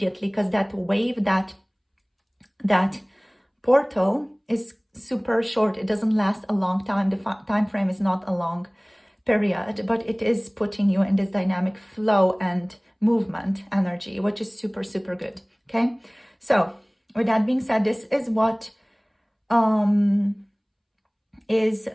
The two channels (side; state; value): both; identical; correlation 1.00